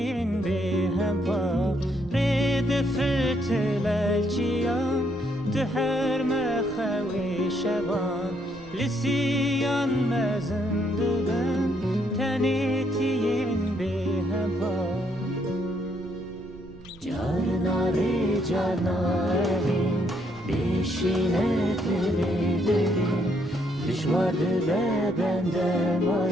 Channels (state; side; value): noise; right; rumble, 19 dB below the sound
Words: به هم پا رید فتلالچیان ده هر مخوی شبان لسیان مزنده بن تنیتین به هم پا Carnari carnari Bişine dilerim Düşvardı be benden